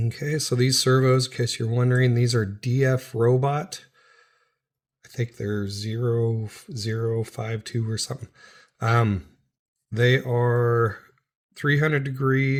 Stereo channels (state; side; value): identical; both; correlation 1.00